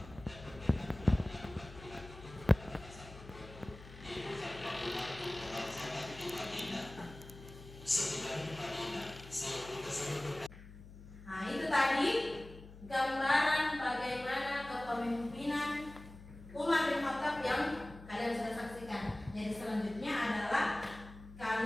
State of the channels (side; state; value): left; noise; hum, 17 dB below the sound